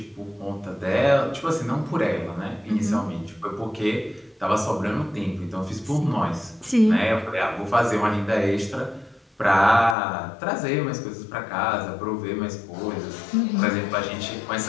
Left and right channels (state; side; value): drops out; right; at 10.0 s